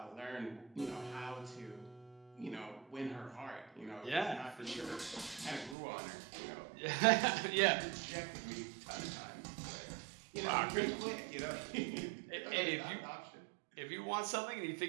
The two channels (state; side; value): drops out; left; at 5.8 s